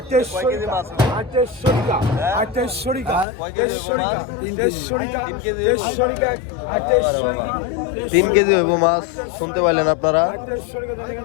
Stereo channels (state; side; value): drops out; right; at 3.2 s